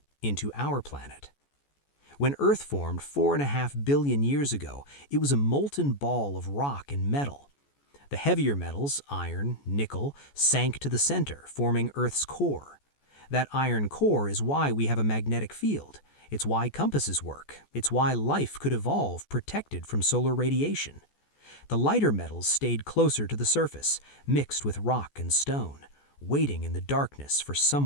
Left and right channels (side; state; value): right; late; 14 ms